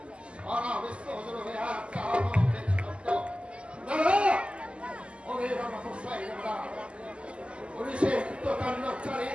সারা বিশ্ব হজর হয়ে একটা আনন্দের শব্দ। দাদা ওদের আমার হোসাই দাদা পুলিশের কৃতকাণ্ডচারে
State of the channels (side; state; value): left; late; 0.054 ms